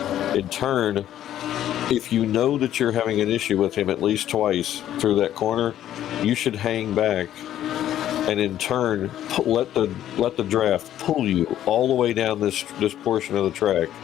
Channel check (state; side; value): quieter; right; 11.8 dB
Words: In turn, if you know that you're having an issue with him at least twice through that corner, you should hang back and in turn let the draft pull you all the way down this portion of the track.